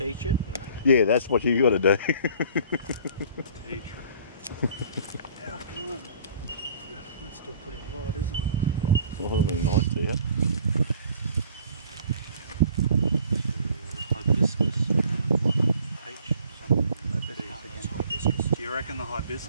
it. And Yeah, that's what you got to do. Teacher. Yeah, that's still pretty wide, isn't it? Well, that'll be nice to you. Hibiscus and what? H something. that's hibiscus. Do you reckon the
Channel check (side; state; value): both; inverted; correlation -0.52